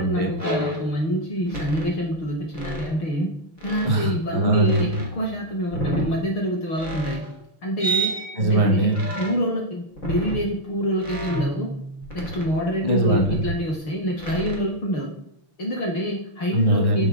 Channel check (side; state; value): right; late; 6.5 ms